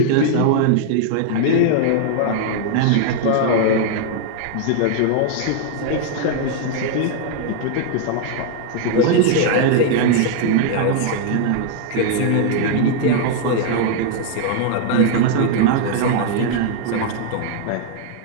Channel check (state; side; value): different; both; correlation 0.00